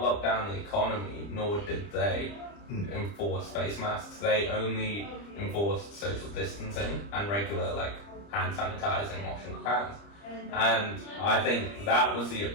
lock down the economy, nor did they enforce face masks. They only enforced social distancing and regular hand sanitizing, washing of hands. And I think that was the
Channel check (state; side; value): late; right; 30 ms